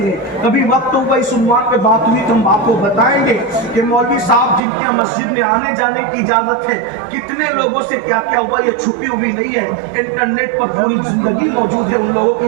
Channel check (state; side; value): drops out; left; at 4.6 s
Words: لیں۔ کبھی وقت ہوگا اس عنوان پہ بات ہوئی تو ہم آپ کو بتائیں گے کہ مولوی صاحب جن کے مسجد میں آنے جانے کی اجازت ہے کتنے لوگوں سے کیا کیا ہوا، یہ چھپی ہوئی نہیں ہے، انٹرنیٹ پر پوری زندگی موجود ہے۔ ان لوگوں